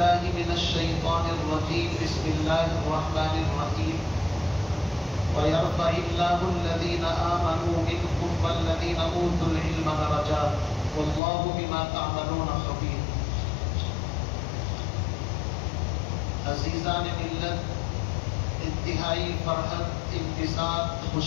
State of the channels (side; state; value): right; drops out; at 11.2 s